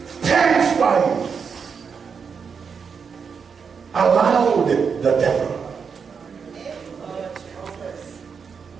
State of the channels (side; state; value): left; quieter; 6.1 dB